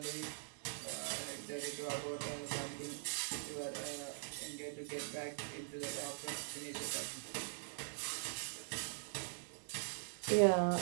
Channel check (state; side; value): silent; left; digital silence